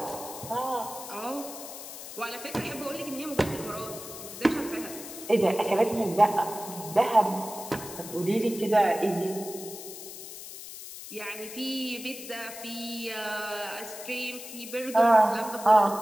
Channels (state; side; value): noise; left; hiss, 12 dB below the sound